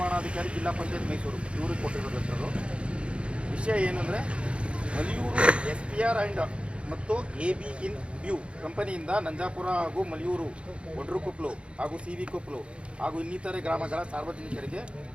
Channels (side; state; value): left; late; 0.059 ms